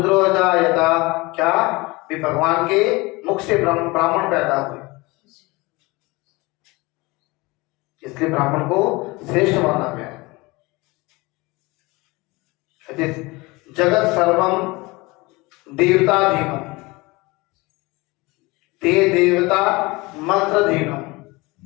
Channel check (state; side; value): quieter; right; 23.6 dB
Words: जायता। क्या? भी भगवान के मुख से ब्राह्मण पैदा हुए, इसलिए ब्राह्मण को श्रेष्ठ माना गया। जगत सर्वम देवताधीनम, ते देवता मंत्रधीनम,